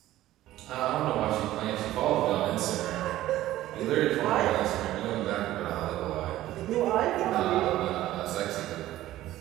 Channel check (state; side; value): quieter; left; 14.8 dB